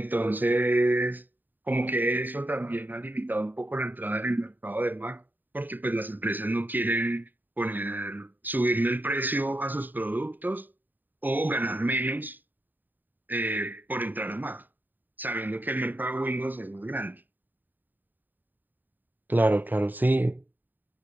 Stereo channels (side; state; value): left; late; 0.090 ms